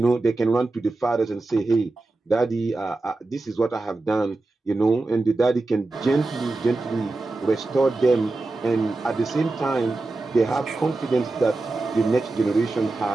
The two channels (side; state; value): left; quieter; 3.2 dB